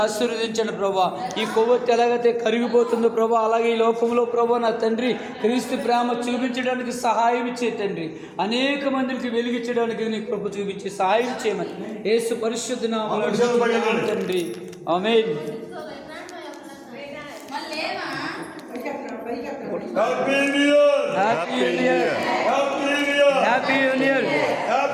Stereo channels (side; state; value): both; identical; correlation 1.00